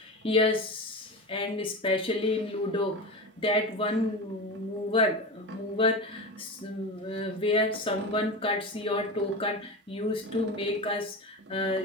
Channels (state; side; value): normal; both; correlation 0.25